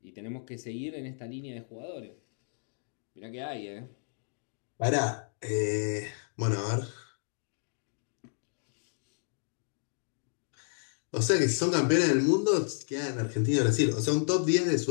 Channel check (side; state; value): right; silent; digital silence